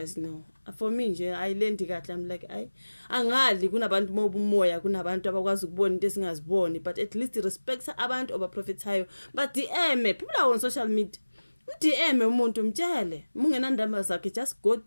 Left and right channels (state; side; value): inverted; both; correlation -1.00